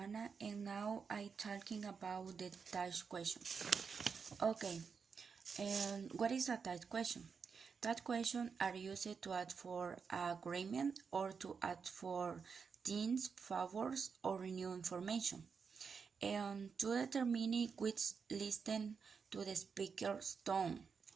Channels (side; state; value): left; quieter; 5.8 dB